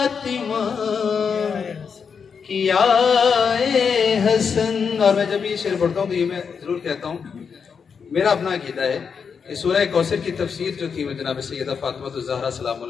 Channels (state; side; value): quieter; right; 6.2 dB